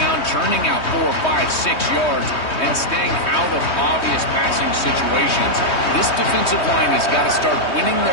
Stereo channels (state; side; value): late; right; 3.2 ms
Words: churning out 4, 5, 6 yards, and staying out of obvious passing situations. This defensive line has got to start winning